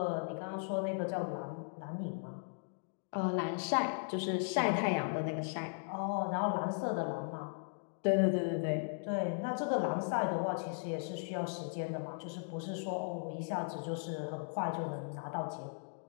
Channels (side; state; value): right; silent; digital silence